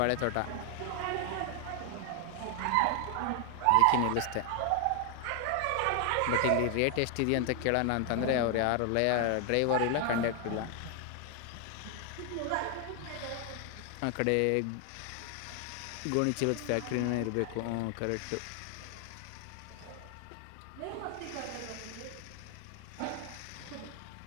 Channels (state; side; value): different; both; correlation 0.00